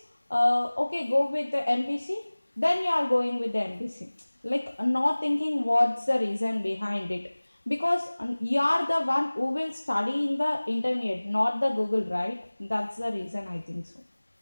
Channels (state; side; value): inverted; both; correlation -1.00